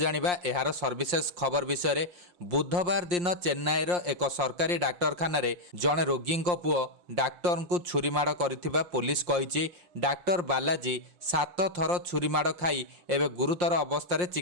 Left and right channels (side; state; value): left; late; 5.7 ms